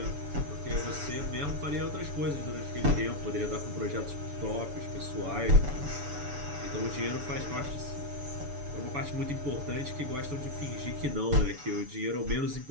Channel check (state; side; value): late; left; 6.9 ms